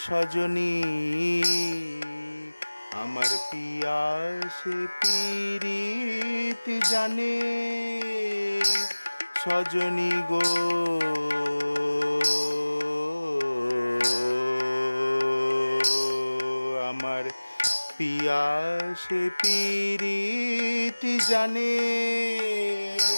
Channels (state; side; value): inverted; both; correlation -1.00